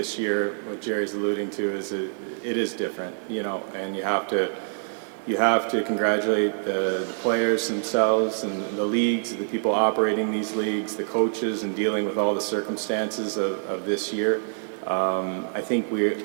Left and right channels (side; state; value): left; silent; 61 dB below the other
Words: year, what Jerry's alluding to is it is different, you know, and you have to congratulate the players themselves and the leagues, the people operating these leagues, the coaches, and dealing with all the circumstances of this year. I think we